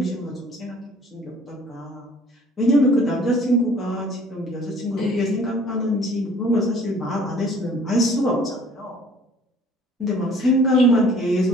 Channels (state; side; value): normal; both; correlation 0.53